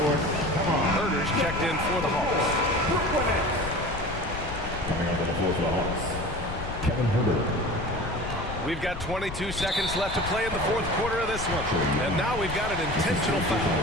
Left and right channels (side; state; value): left; noise; rumble, 9 dB below the sound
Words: Come on. Herder's checked in for the Hawks. Coming onto the floor for the Hawks. Kevin Herder. We've got 22 seconds left to play in the fourth quarter of this one. And now we've got an intentional foul.